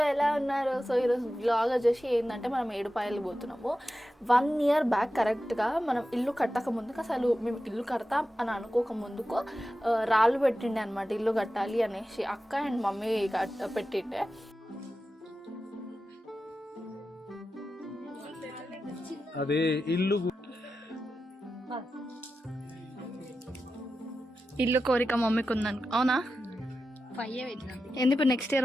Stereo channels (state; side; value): normal; both; correlation 0.92